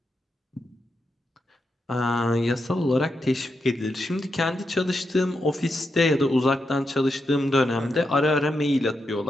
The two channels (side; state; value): both; normal; correlation 0.85